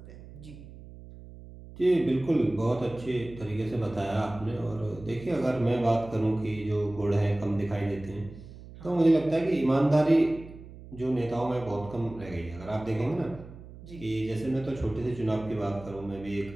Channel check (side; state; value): right; noise; hum, 17 dB below the sound